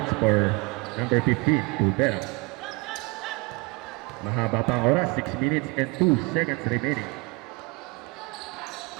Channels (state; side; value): quieter; left; 27.5 dB